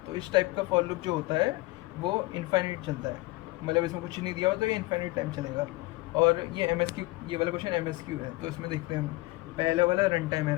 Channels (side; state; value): right; quieter; 21.5 dB